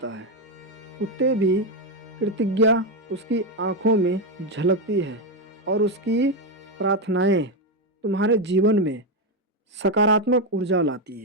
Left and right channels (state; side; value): normal; both; correlation 0.07